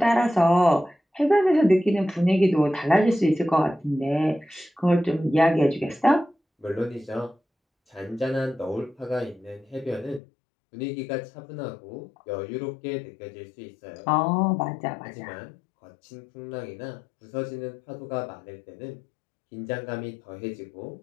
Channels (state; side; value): drops out; right; at 10.2 s